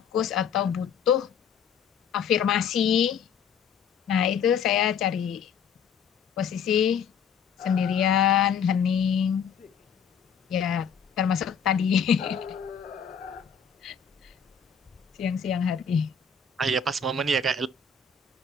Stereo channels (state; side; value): quieter; right; 6.6 dB